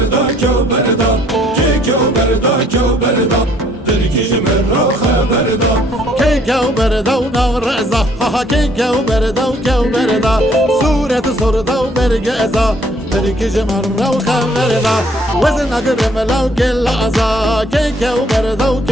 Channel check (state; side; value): normal; both; correlation 0.62